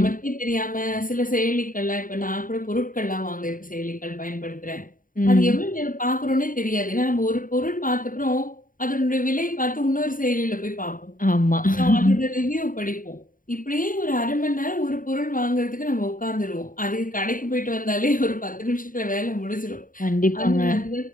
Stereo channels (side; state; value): right; late; 0.40 ms